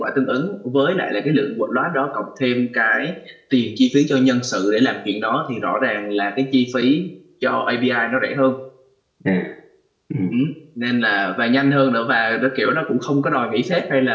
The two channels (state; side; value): identical; both; correlation 1.00